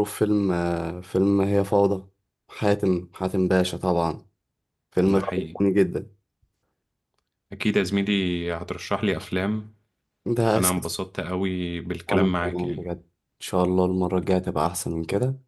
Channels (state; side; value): identical; both; correlation 1.00